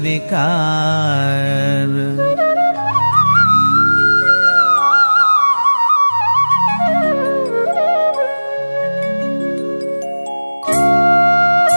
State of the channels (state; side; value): inverted; both; correlation -1.00